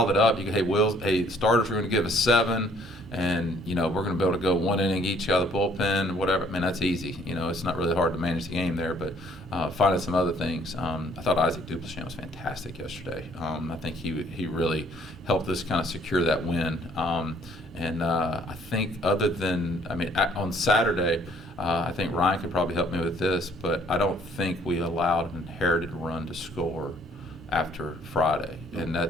it up, you go, hey, starters are going to give us 7, and you know we're going to be able to go one inning each out of the bullpen, whatever. I mean, that's easy. You know, it's not really hard to manage the game there, but finding some other things. I thought Isaac Duplichamp was fantastic yesterday. I think he really helped us kind of secure that win. And I think other than, I mean, on Saturday, I think Ryan could probably help me with this, but I don't think we allowed an inherited run to score after Friday, and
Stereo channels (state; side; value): normal; both; correlation 0.61